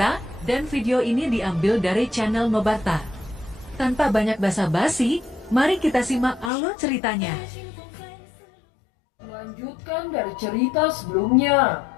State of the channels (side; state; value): right; drops out; at 6.5 s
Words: dan video ini diambil dari channel Mebarta. Tanpa banyak basa-basi, mari kita simak alur ceritanya. Melanjutkan dari cerita sebelumnya,